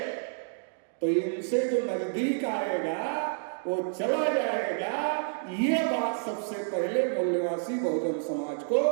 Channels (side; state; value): left; silent; digital silence